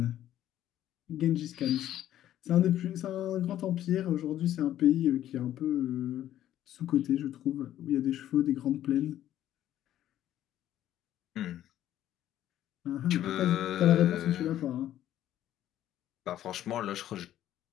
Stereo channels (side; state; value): right; quieter; 12.3 dB